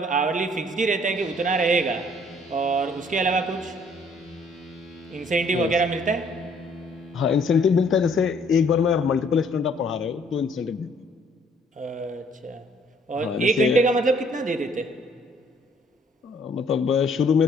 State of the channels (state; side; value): normal; both; correlation 0.62